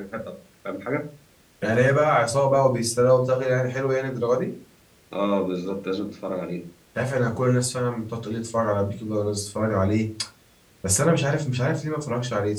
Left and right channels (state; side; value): identical; both; correlation 1.00